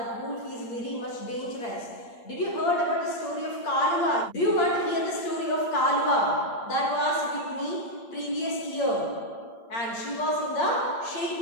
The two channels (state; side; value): late; right; 8.7 ms